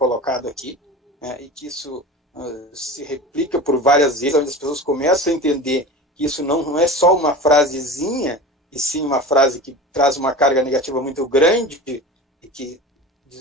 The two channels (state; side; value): normal; both; correlation 0.33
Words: aqui, né, e que isso se replica por várias vezes, onde as pessoas começam a entender que isso não é só uma frasezinha, e sim uma frase que traz uma carga negativa muito grande e que